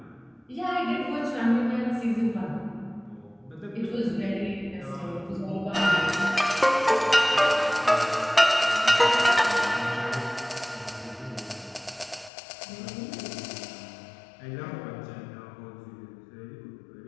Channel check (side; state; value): right; drops out; at 12.3 s